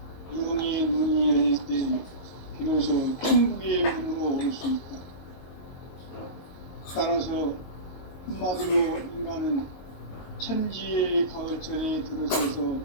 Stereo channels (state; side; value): late; right; 22 ms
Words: 영의 눈이 열릴 때 비로소 천국의 문으로 오를 수 있다. 따라서 한마디로 인간은 천지의 가을철에 들어서서